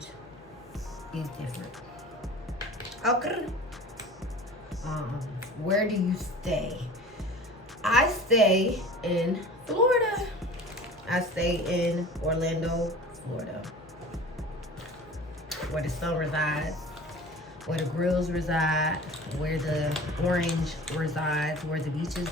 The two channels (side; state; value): both; normal; correlation 0.40